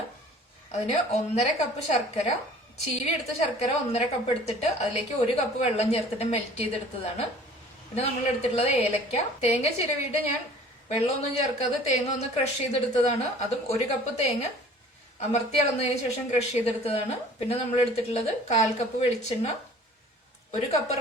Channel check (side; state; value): both; normal; correlation 0.49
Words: അതിന് 1.5 കപ്പ് ശർക്കര, ചീവി എടുത്ത ശർക്കര 1.5 കപ്പ് എടുത്തിട്ട് അതിലേക്ക് 1 കപ്പ് വെള്ളം ചേർത്തിട്ട് മെൽറ്റ് ചെയ്തെടുത്തതാണ്. പിന്നെ നമ്മൾ എടുത്തിട്ടുള്ളത് ഏലക്ക. തേങ്ങ ചിരവിയിട്ട് ഞാൻ വെള്ളമൊന്നും ചേർക്കാതെ തേങ്ങ ഒന്ന് ക്രഷ് ചെയ്തെടുത്തതാണ്. അതും 1 കപ്പ് തേങ്ങ അമർത്തി അളന്നതിന് ശേഷം ക്രഷ് ചെയ്തെടുത്തതാണ്. പിന്നെ നമ്മൾ എടുത്തിട്ടുള്ളത് 1/4 കപ്പ് വെളിച്ചെണ്ണ, 1 കപ്പ്